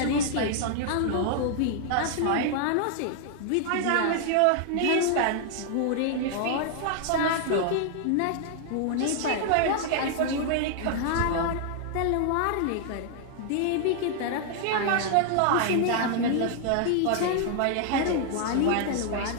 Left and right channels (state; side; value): different; both; correlation 0.00